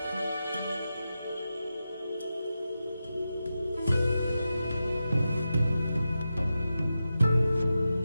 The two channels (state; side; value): inverted; both; correlation -0.91